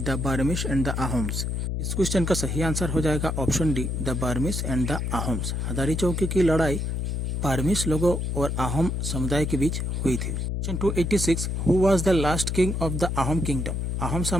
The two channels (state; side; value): noise; left; hum, 1 dB below the sound